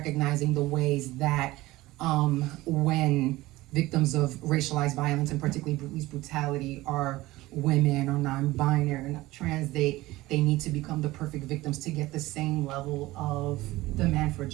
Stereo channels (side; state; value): left; quieter; 18.6 dB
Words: the ways that when victims of racialized violence, and particularly police brutality, are women or non-binary or not trans, they need to become the perfect victims to get the same level of demand for